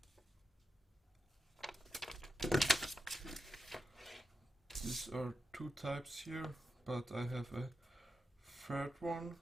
These are two types here, but I have a third one.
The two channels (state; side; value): normal; both; correlation 0.88